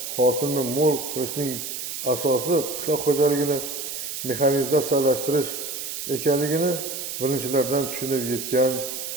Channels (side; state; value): right; noise; hiss, 6 dB below the sound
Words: hosilni mo'l qilishning asosi qishloq xo'jaligini mexanizatsiyalashtirish ekanligini birinchilardan tushunib yetgan